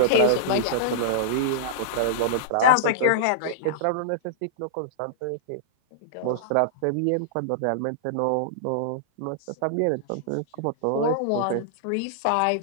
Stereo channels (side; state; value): both; different; correlation -0.02